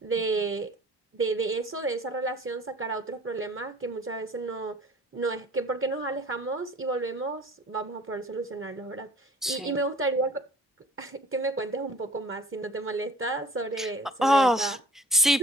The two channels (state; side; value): normal; both; correlation 0.50